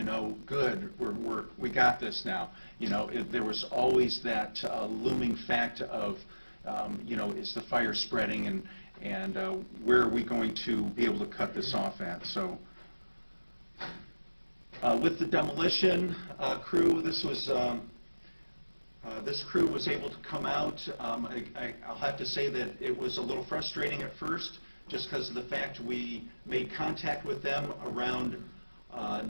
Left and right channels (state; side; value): inverted; both; correlation -1.00